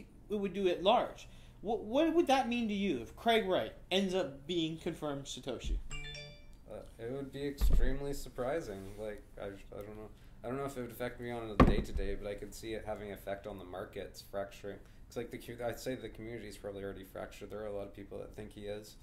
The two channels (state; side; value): identical; both; correlation 1.00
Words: it would do at large. What would that mean to you if Craig Wright ends up being confirmed Satoshi? It would be extremely surprising. Like, I don't know. I don't know if it would affect me on a day-to-day, but I could see it having an effect on the markets, fracturing. It's I'd say the community is probably already fractured. There are a lot of people that think he is,